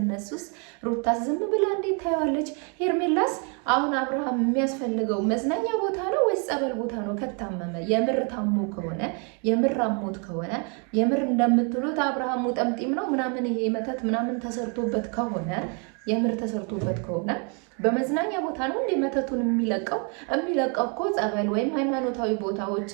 ሩታስ ዝም ብላ እንዴት ታየዋለች? ሄርሜላስ አሁን አብርሃም የሚያስፈልገው መዝናኛ ቦታ ነው ወይስ ጸበል ቦታ ነው? ከታመመ የምር ታሞ ከሆነ የምር አሞት ከሆነ የምር እንደምትሉት አብርሃሙ ጠምጢም ነው ምናምን ይሄ መተት ምናምን ተሰርቶበት ከሆነ የምር ተሰርቶበት ከሆነ በመዝናኛ ቦታ ነው እንደ መተቱን የሚለቀው እኮ ጸበል ወይም ሃይማኖታዊ ቦታዎች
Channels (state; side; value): quieter; left; 36.8 dB